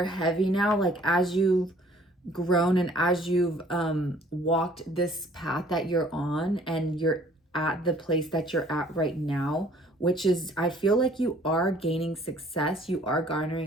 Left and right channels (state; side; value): normal; both; correlation 0.56